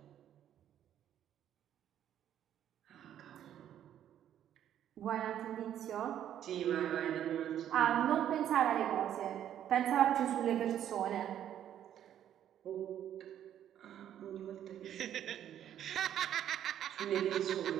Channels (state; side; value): quieter; left; 10.6 dB